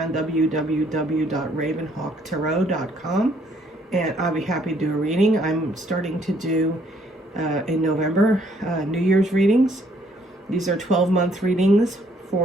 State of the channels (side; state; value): both; normal; correlation 0.65